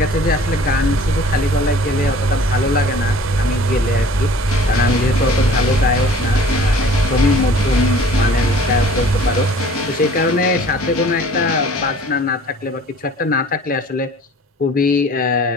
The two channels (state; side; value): normal; both; correlation 0.49